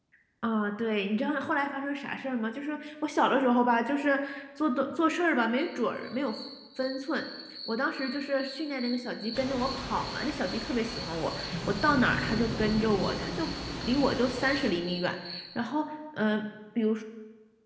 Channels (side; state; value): both; identical; correlation 1.00